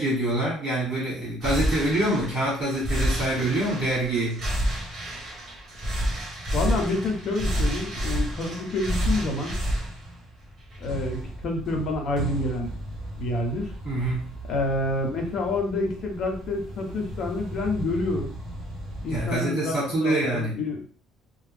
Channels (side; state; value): both; normal; correlation 0.62